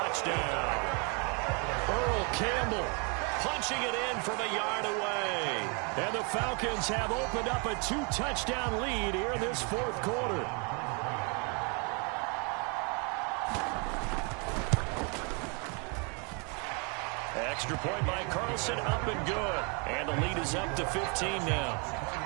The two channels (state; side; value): quieter; left; 34.7 dB